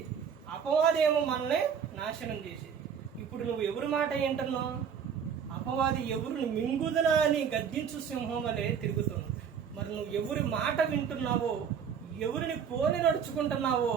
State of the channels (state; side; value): quieter; left; 7.4 dB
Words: అపవాదేమో మనల్ని నాశనం చేసేది. ఇప్పుడు నువ్వు ఎవరి మాట ఏంటన్నావు? అపవాది ఎవరిని మింగుదనా అని గద్దించు సింహం వలె తిరుగుతుంది. మరి నువ్వు ఎవరి మాట వింటున్నావో, ఎవరిని పోలి నడుచుకుంటున్నావో